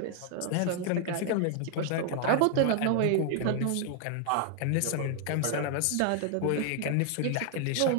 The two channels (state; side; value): different; both; correlation 0.00